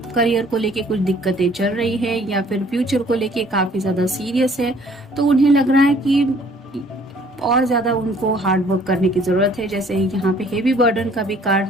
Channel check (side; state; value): both; normal; correlation 0.57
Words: करियर को लेके कुछ दिक्कतें चल रही है या फिर फ्यूचर को लेके काफी ज्यादा सीरियस है, तो उन्हें लग रहा है कि और ज्यादा उनको हार्ड वर्क करने की जरूरत है। जैसे यहाँ पे हेवी बर्डन का भी कार्ड